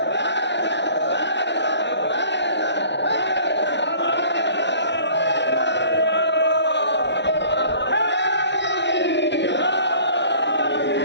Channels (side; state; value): right; late; 0.51 ms